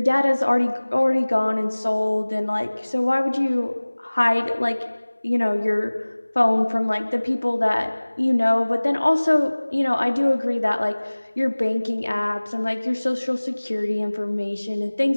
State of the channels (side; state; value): both; inverted; correlation -1.00